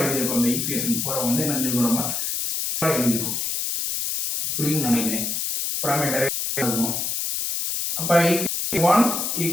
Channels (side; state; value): left; noise; hiss, 1 dB below the sound